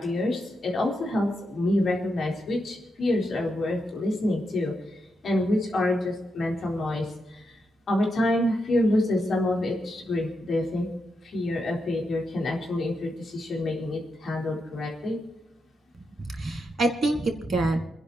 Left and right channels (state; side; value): normal; both; correlation 0.84